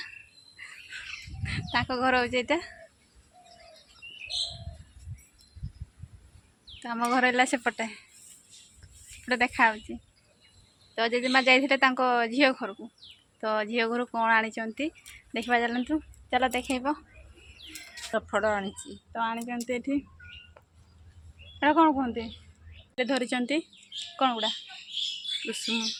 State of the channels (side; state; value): both; identical; correlation 1.00